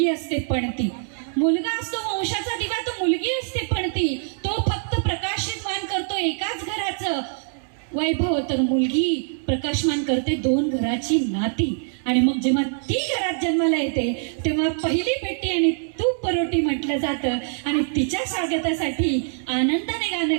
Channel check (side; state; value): left; silent; 63 dB below the other